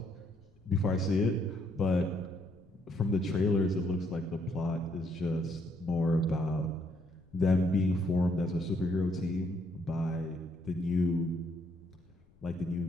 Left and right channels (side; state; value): left; noise; rumble, 29 dB below the sound